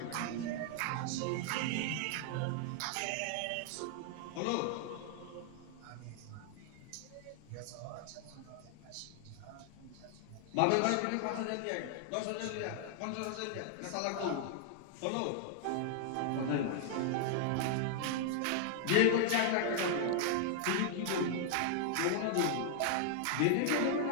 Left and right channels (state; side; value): different; both; correlation 0.00